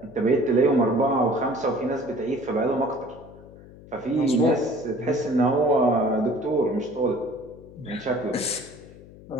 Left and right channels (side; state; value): left; noise; hum, 20 dB below the sound